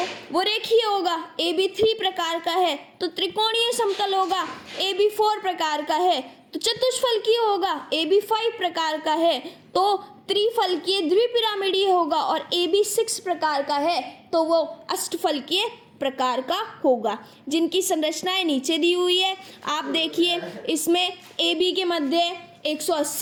वो रेखीय होगा। AB3 प्रकार का है तो त्रिकोणीय समतल होगा। AB4 प्रकार का है तो चतुष्फलकीय होगा। AB5 प्रकार का है तो त्रिफलकीय द्विपिरामिडीय होगा, और AB6 प्रकार का है तो वो अष्टफलकीय प्रकार का होगा, जिनकी संरचनाएं नीचे दी हुई है। आप देखिए इसमें AB के मध्य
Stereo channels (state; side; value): identical; both; correlation 1.00